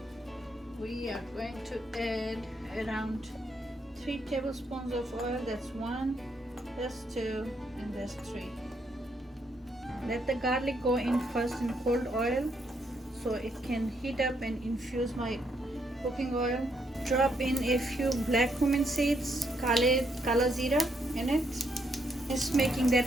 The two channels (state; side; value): normal; both; correlation 0.75